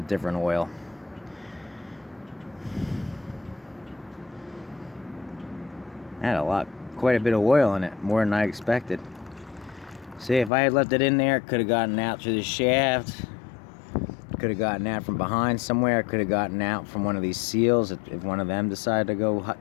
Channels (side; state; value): right; drops out; at 10.5 s